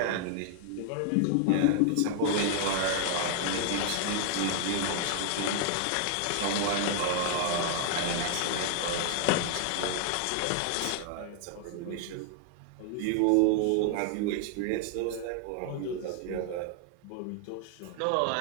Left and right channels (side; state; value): both; different; correlation 0.00